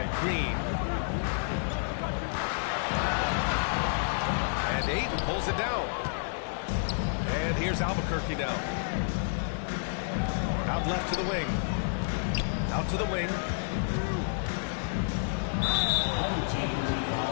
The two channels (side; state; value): right; silent; 58 dB below the other